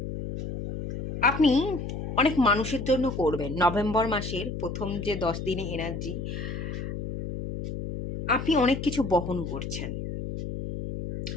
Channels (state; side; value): noise; left; hum, 6 dB below the sound